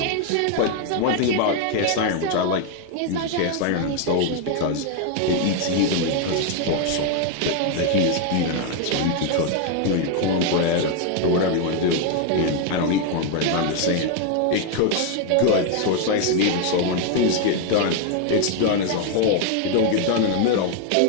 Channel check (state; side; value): different; both; correlation 0.01